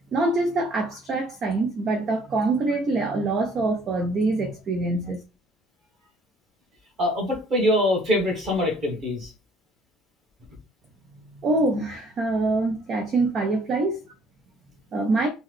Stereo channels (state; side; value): normal; both; correlation 0.59